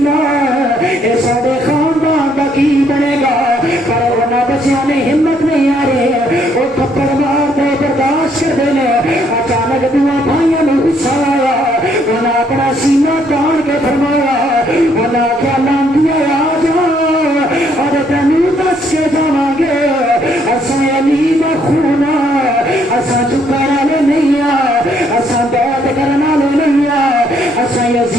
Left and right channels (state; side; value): normal; both; correlation 0.69